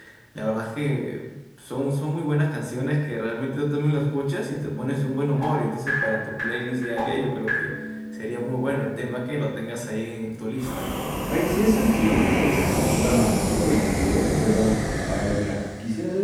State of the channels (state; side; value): identical; both; correlation 1.00